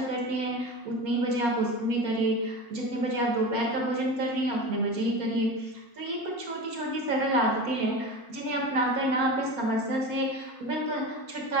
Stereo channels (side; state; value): both; normal; correlation 0.29